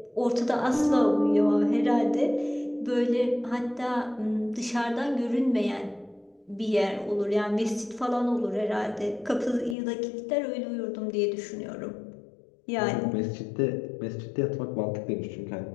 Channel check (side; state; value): right; drops out; at 9.8 s